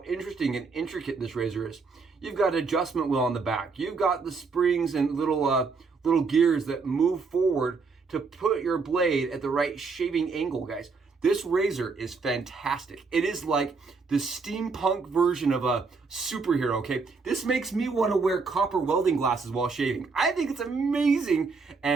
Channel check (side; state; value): left; quieter; 4.6 dB